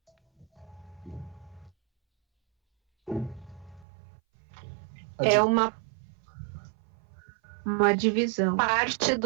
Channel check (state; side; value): drops out; left; at 3.9 s